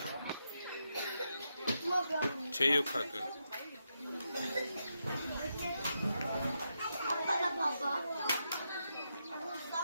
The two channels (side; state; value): both; inverted; correlation -0.84